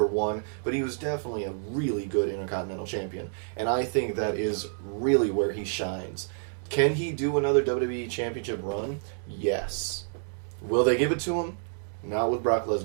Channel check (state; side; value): silent; left; digital silence